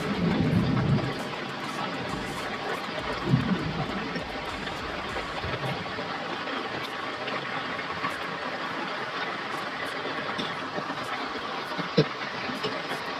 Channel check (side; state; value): both; identical; correlation 1.00